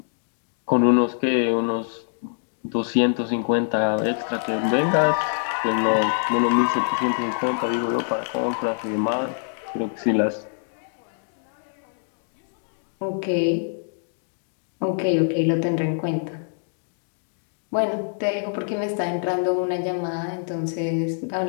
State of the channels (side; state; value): right; silent; digital silence